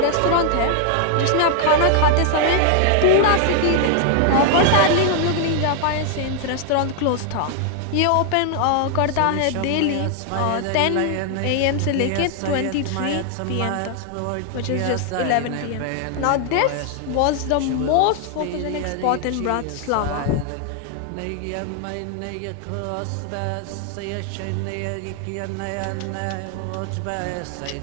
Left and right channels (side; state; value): both; different; correlation 0.00